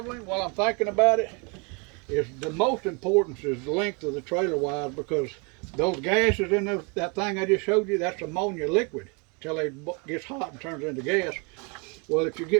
while I'm thinking about it, is the most important is the length of the trailer wise, because those gases in that thing I just showed you, that's ammonia liquid till it gets hot and turns into gas. Well, if you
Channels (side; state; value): left; quieter; 31.5 dB